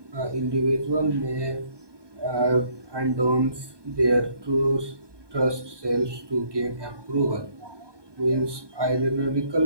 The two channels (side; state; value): left; late; 1.2 ms